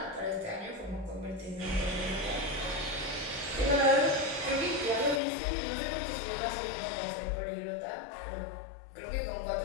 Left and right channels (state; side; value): drops out; right; at 5.2 s